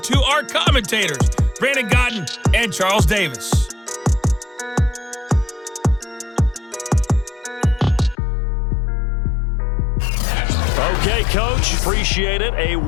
our commentators, Brandon Godden and Charles Davis. Okay, Coach, appreciate it. A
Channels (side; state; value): right; drops out; at 8.2 s